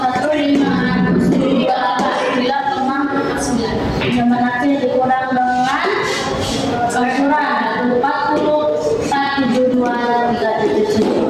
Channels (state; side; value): identical; both; correlation 1.00